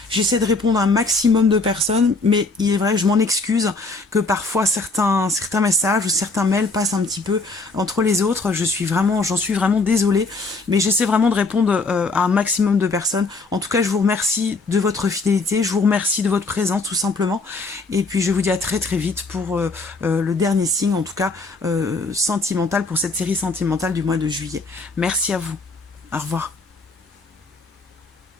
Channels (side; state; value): right; quieter; 3.6 dB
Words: J'essaie de répondre à un maximum de personnes, mais il est vrai, je m'en excuse que parfois certains messages ou certains mails passent un petit peu entre les autres. J'en suis vraiment désolée, mais j'essaie vraiment de répondre à un maximum de personnes. En tout cas, je vous remercie de votre fidélité, je vous remercie de votre présence tout simplement. Et puis je vous dis à très très vite pour le dernier signe, en tout cas sentimental, pour cette série sentimentale du mois de juillet. Merci à vous. Au revoir.